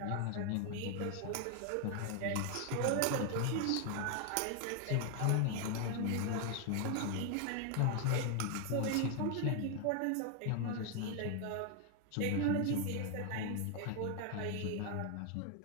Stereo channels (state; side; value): different; both; correlation 0.00